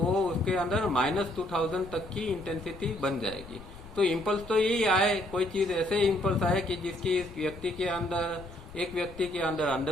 उसके अंदर -2000 तक की इंटेंसिटी बन जाएगी। तो इम्पल्स तो यही आए, कोई चीज ऐसे इम्पल्स आए कि जिसकी इस व्यक्ति के अंदर, एक व्यक्ति के अंदर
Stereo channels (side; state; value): left; noise; rumble, 17 dB below the sound